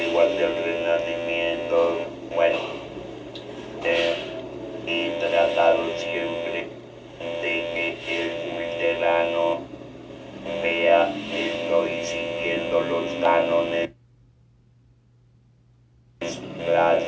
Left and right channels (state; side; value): identical; both; correlation 1.00